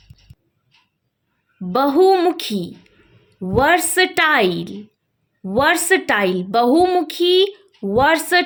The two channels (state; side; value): identical; both; correlation 1.00